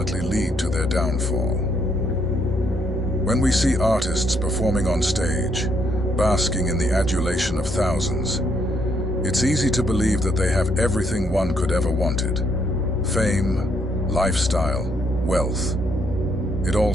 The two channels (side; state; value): both; normal; correlation 0.73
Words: lead to their downfall. When we see artists performing on stage, basking in the adulation of thousands, it's easy to believe that they have everything one could ever wanted. Fame, lifestyle, wealth. It all